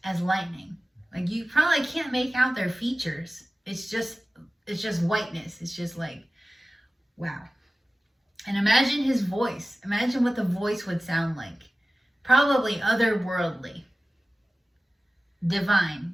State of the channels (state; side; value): normal; both; correlation 0.97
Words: as lightning. Like, you probably can't make out their features. It's just whiteness. It's just like, wow. And imagine his voice. Imagine what the voice would sound like. Probably otherworldly.